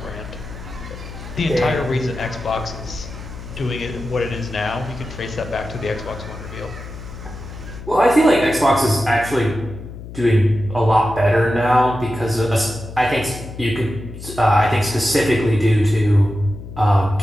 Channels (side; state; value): left; noise; hum, 12 dB below the sound